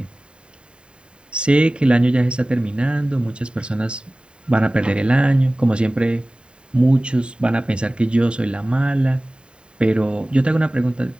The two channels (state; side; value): late; left; 0.052 ms